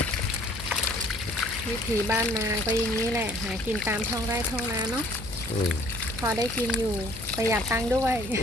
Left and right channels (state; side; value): noise; left; hum, 14 dB below the sound